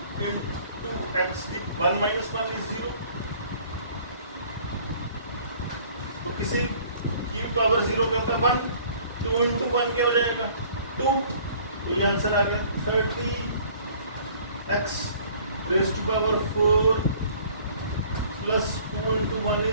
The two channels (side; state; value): both; inverted; correlation -0.53